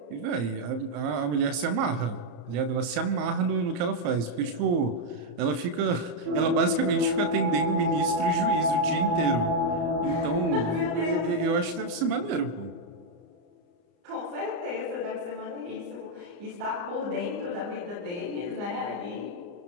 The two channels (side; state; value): left; late; 34 ms